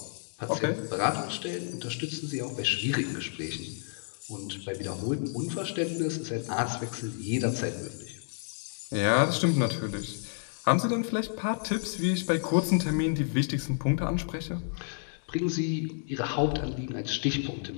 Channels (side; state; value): right; silent; 58 dB below the other